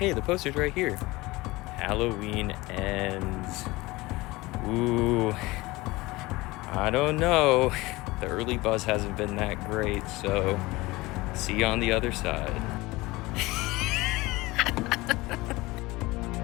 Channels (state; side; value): quieter; right; 21.1 dB